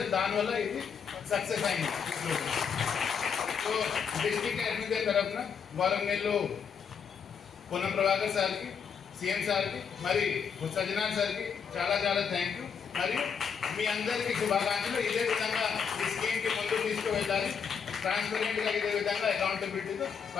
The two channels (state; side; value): quieter; right; 6.7 dB